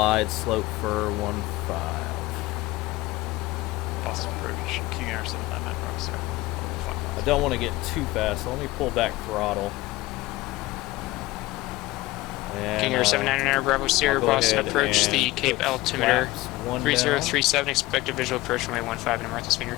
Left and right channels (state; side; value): quieter; right; 18.8 dB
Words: slope for 15. Boston approach, King Air 799 Rockstar. I don't want to get too fast, so let me pull back throttle. And, King Air 799 Bravo Sierra, I'll go Boston ahead approach the and Cape put altimeter flaps 1 down. 3037, expect a visual approach runway 15 in Martha's Vineyard.